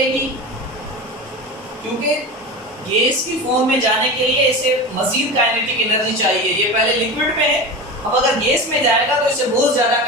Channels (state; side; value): normal; both; correlation 0.28